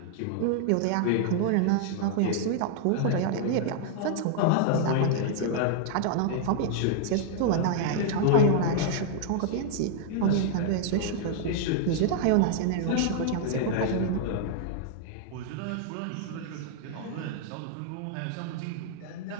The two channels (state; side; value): different; both; correlation -0.01